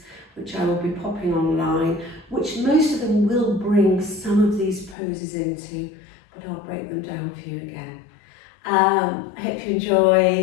which I will be popping online, which most of them will bring some of these poses into, but I'll break them down for you again. I hope you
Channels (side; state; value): right; drops out; at 5.0 s